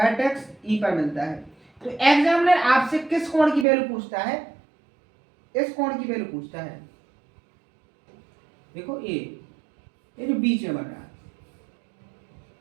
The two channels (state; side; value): drops out; left; at 3.7 s